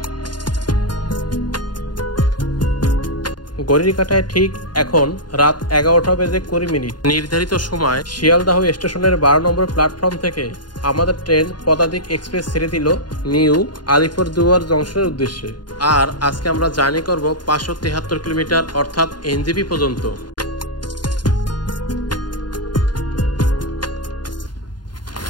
ঘড়ির কাঁটায় ঠিক এখন রাত 11টা বেজে 20 মিনিট। নির্ধারিত সময় শিয়ালদাহ স্টেশনের 12 নম্বর প্ল্যাটফর্ম থেকে আমাদের ট্রেন পদাতিক এক্সপ্রেস ছেড়ে দিল নিউ আলিপুরদুয়ার জংশনের উদ্দেশ্যে। আর আজকে আমরা জার্নি করব 573 কিলোমিটার, অর্থাৎ এনজেপি পর্যন্ত।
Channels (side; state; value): right; late; 0.70 ms